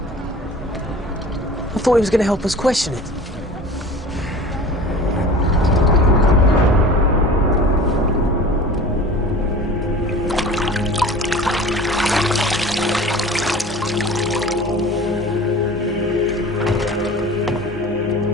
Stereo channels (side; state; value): both; normal; correlation 0.40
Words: I thought he was going to help us question it.